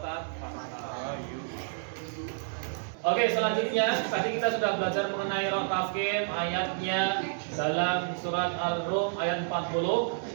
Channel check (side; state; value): left; silent; 55 dB below the other